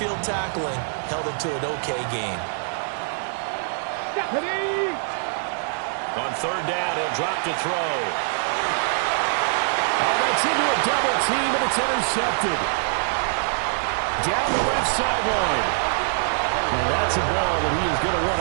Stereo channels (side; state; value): left; silent; digital silence